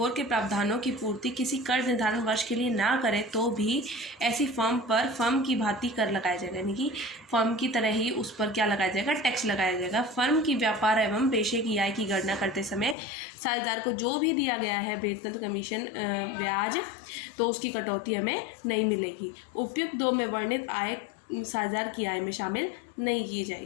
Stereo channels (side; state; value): right; drops out; at 13.0 s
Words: के प्रावधानों की पूर्ति किसी कर निर्धारण वर्ष के लिए ना करे तो भी ऐसी फर्म पर फर्म की भांति कर लगाया जाएगा, यानी कि फर्म की तरह ही उस पर क्या लगाया जाएगा, टैक्स लगाया जाएगा। फर्म की व्यापार एवं पेशे की आय की गणना करते समय साझेदार को जो भी दिया गया है वेतन, कमीशन, ब्याज, तो उसकी कटौती हमें नहीं मिलेगी। उपयुक्त 2 में वर्णित आय साझेदार की आय में शामिल नहीं की